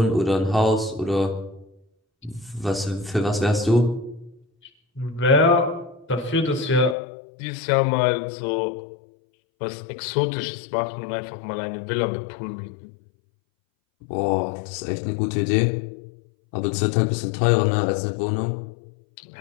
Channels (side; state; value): right; drops out; at 7.0 s